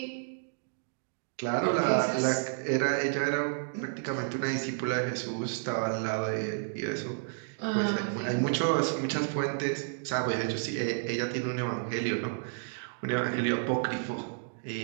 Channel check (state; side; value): silent; left; digital silence